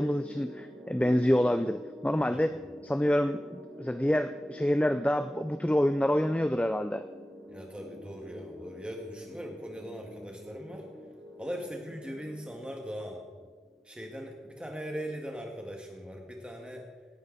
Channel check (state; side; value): normal; both; correlation 0.95